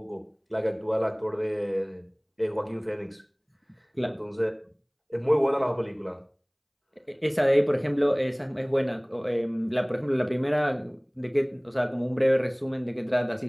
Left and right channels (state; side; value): identical; both; correlation 1.00